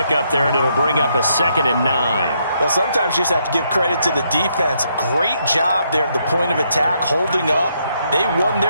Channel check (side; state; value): both; inverted; correlation -0.75